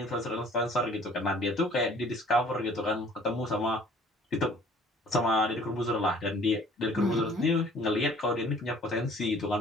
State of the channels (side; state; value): both; normal; correlation 0.54